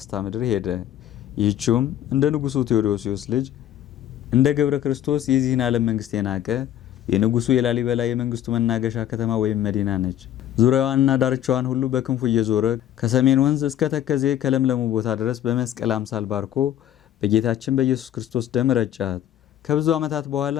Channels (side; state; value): right; quieter; 11.5 dB